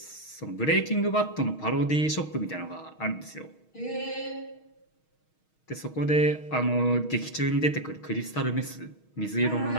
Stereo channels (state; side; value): late; right; 6.4 ms